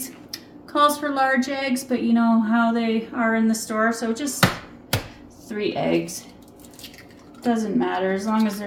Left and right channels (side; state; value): both; identical; correlation 1.00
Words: Calls for large eggs, but you know how they are in the store, so just 3 eggs. Doesn't matter as long as